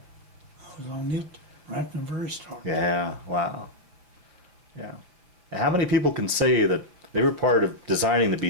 was on it right from the very start. Yeah. Wow. Yeah. And how many people can say that they were part of designing the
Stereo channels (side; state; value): left; late; 5.5 ms